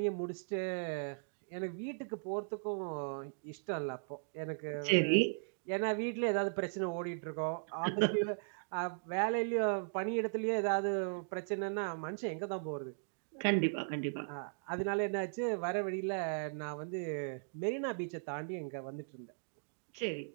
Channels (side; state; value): left; silent; digital silence